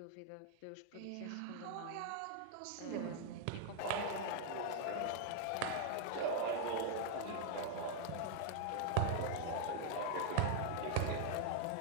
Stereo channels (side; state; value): both; different; correlation 0.00